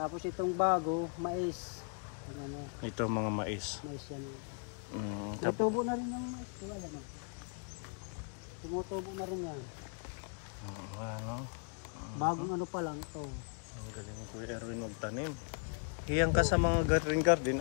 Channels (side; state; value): right; quieter; 38.4 dB